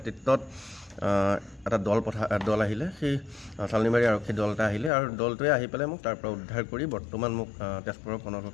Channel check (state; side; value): drops out; right; at 4.9 s